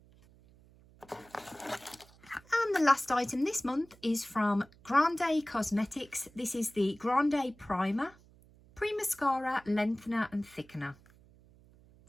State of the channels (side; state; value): right; noise; hum, 26 dB below the sound